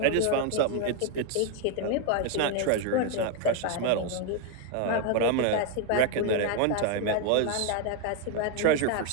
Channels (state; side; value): different; both; correlation 0.01